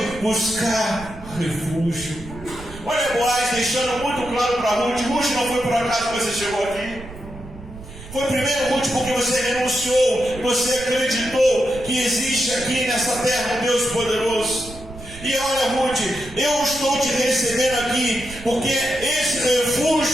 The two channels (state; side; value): noise; right; rumble, 15 dB below the sound